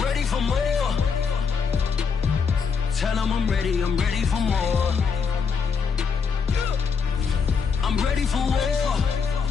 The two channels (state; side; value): quieter; right; 5.7 dB